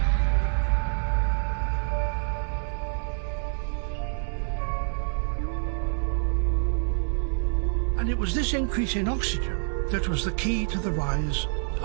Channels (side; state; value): left; silent; digital silence